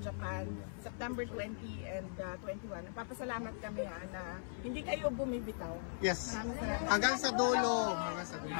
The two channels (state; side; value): silent; right; 52 dB below the other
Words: September 20 and 21. Papasalamat kami na hindi kayo bumibitaw. Yes. Maraming salamat. Hanggang sa dulo. Hanggang sa dulo.